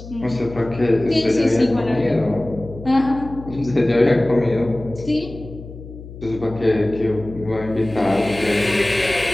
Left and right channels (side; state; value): left; noise; hum, 14 dB below the sound